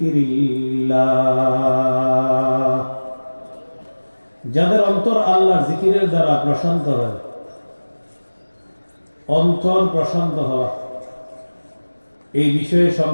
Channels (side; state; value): both; inverted; correlation -1.00